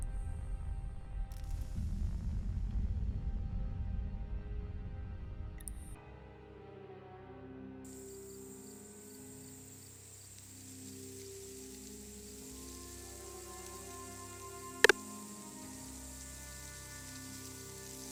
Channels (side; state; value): both; identical; correlation 1.00